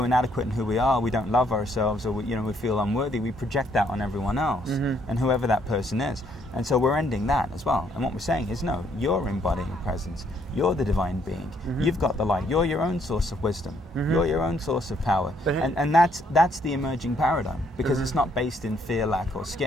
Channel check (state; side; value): normal; both; correlation 0.69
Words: inadequate in who we are, we don't love ourselves, or we feel unworthy, we project that on everyone else, and whoever that person is. And so we're ending that as well. And what we're saying is, no, you're embodying presence. You're the divine being. You've got the light. You're your own source of wisdom. You're your own source of power. And that's the emerging paradigm, because it's not based in fear, lack, or